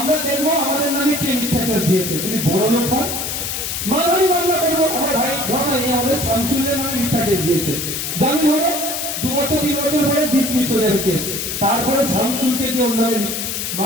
দেখবো আমাদের নামে কে মিথ্যা কেস দিয়েছে। যদি বড় লোক হয় মানহানি মামলা করবো। আমার ভাই ঘটনা এই আমাদের শামসুলের নামে মিথ্যা কেস দিয়েছে, জামিন হলো 2 বছর 3 বছর পরে ডিসমিস হয়ে যাবে কেস। তারপরে শামসুলকে দিয়ে ওর নামে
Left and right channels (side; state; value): left; noise; hiss, 3 dB below the sound